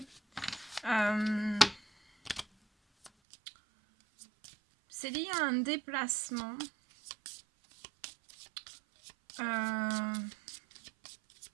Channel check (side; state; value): left; drops out; at 3.1 s